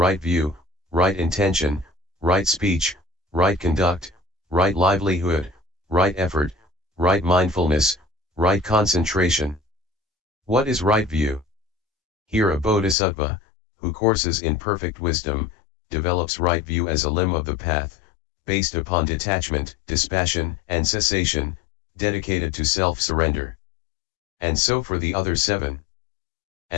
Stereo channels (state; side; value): drops out; right; at 13.0 s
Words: view, right intention, right speech, right conduct, right livelihood, right effort, right mindfulness, Right concentration. What is right view? Here a bodhisattva, who courses in perfect wisdom, develops right view as a limb of the path, based upon detachment, dispassion, and cessation, dedicated to self-surrender. And so for the other 7.